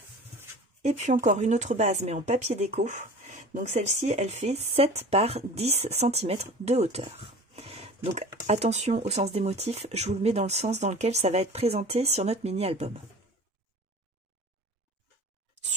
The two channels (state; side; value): normal; both; correlation 0.39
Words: Et puis encore une autre base, mais en papier déco. Donc celle-ci, elle fait 7 par 10 cm de hauteur. Donc attention au sens des motifs, je vous le mets dans le sens dans lequel ça va être présenté sur notre mini-album.